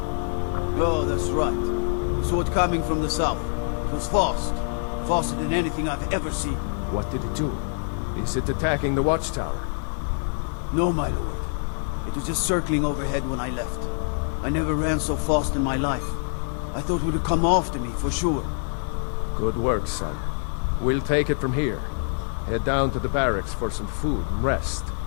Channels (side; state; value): right; silent; 61 dB below the other